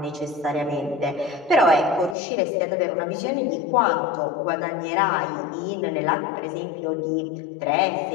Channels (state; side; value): drops out; right; at 2.1 s